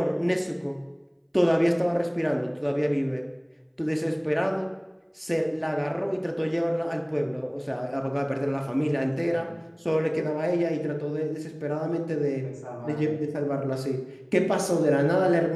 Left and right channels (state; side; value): identical; both; correlation 1.00